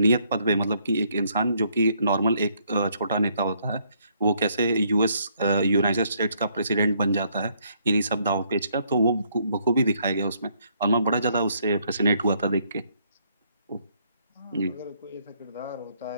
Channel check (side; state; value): both; inverted; correlation -0.70